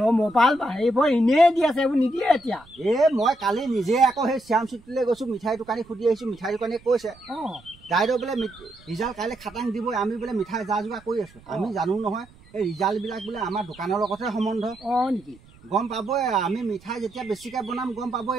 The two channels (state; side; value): noise; right; rumble, 25 dB below the sound